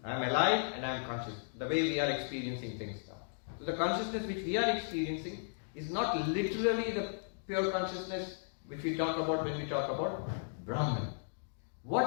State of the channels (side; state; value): right; silent; digital silence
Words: I am alive and I am conscious, the way we are experiencing things now. So the consciousness which we are experiencing is not literally the pure consciousness which we talk about when we talk about Brahman.